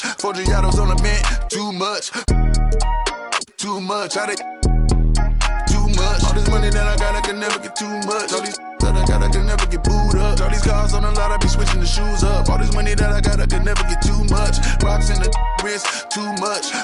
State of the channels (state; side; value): identical; both; correlation 1.00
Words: 4 Giados on the mint, too much. I did too much. All this money that I got, I can never get too much. All these that I got, I can never get booed up. All these cars on the lot, I be switching the shoes up. All this money that I got, I can never get too much. Rocks in the wrist, too much.